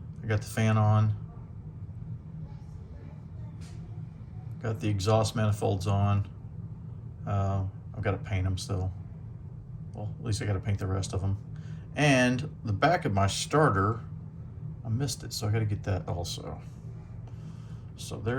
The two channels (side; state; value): both; identical; correlation 1.00